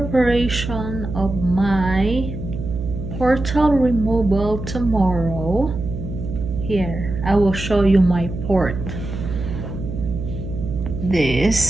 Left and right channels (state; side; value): noise; right; hum, 7 dB below the sound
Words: of my portal removal tomorrow. Here, I will show you my port.